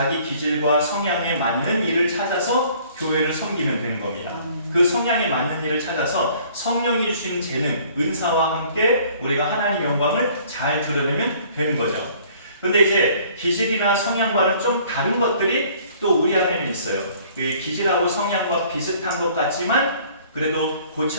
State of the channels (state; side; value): inverted; both; correlation -0.56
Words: 기질과 성향에 맞는 일을 찾아서 교회를 섬기면 되는 겁니다. 그 성향에 맞는 일을 찾아서 성령이 주신 재능, 은사와 함께 우리가 하나님 영광을 잘 드러내면 되는 거죠. 그런데 이제 기질이나 성향과는 좀 다른 것들이 또 우리 안에는 있어요. 기질하고 성향과 비슷한 것 같지만 그래도